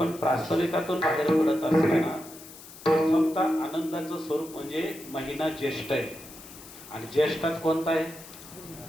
प्रास्ताविकातून बाहेर पडत असताना प्रथमतः आनंदाचं स्वरूप म्हणजे महिना ज्येष्ठ आहे आणि ज्येष्ठात कोणता आहे?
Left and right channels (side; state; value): left; noise; hiss, 17 dB below the sound